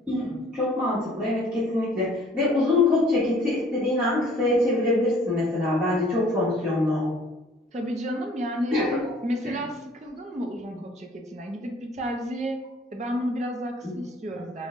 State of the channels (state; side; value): normal; both; correlation 0.55